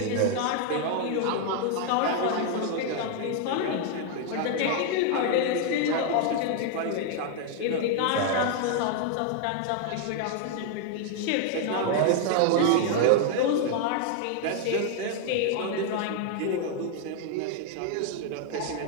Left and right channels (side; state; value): both; different; correlation 0.00